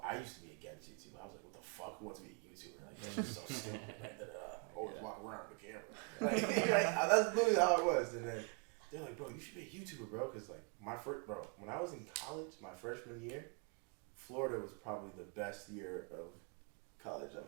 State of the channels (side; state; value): left; quieter; 35.6 dB